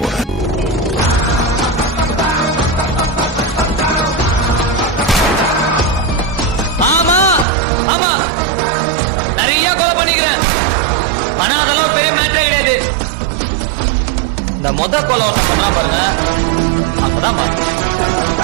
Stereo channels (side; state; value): left; drops out; at 7.5 s